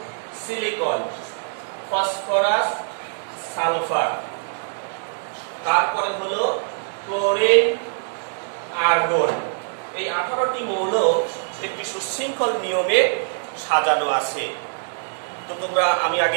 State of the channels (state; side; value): silent; left; digital silence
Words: সিলিকন, ফসফরাস, সালফার, তারপরে হলো ক্লোরিন, আর্গন। এই 18টি মৌল একটি সুশৃঙ্খল নিয়মে সাজানো আছে। তো তোমরা, আমি